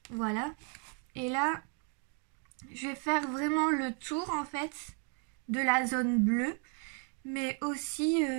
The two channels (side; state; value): left; quieter; 37.4 dB